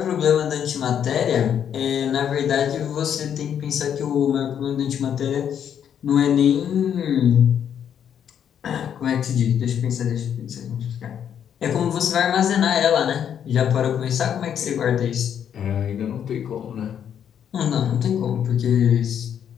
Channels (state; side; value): quieter; right; 8.8 dB